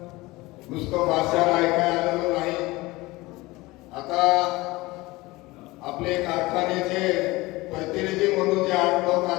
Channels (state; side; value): quieter; right; 21.1 dB